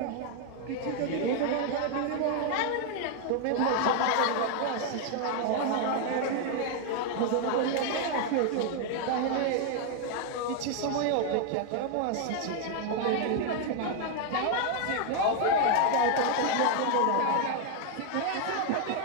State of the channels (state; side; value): different; both; correlation 0.00